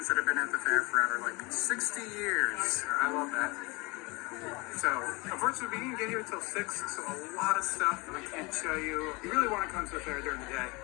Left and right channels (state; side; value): quieter; right; 26.2 dB